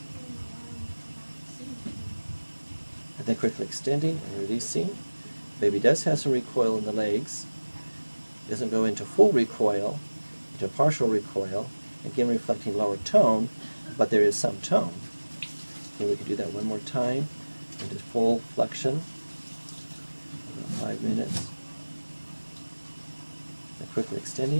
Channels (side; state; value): both; inverted; correlation -1.00